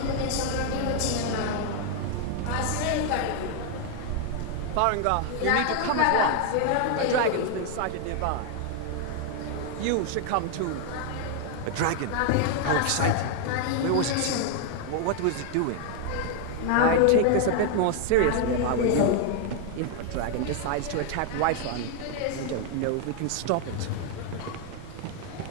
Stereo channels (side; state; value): both; different; correlation 0.00